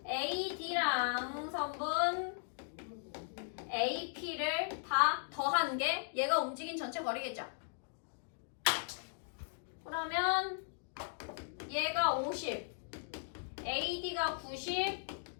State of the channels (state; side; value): silent; right; digital silence